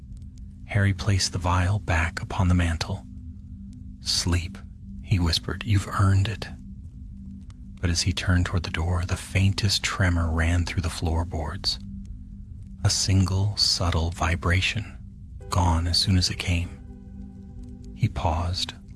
Harry placed the vial back upon the mantel. "Sleep," he whispered, "you've earned it." But as he turned toward the door, the faintest tremor ran through the floorboards. A single, subtle vibration, gone as soon as it came. He paused,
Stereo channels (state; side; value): identical; both; correlation 1.00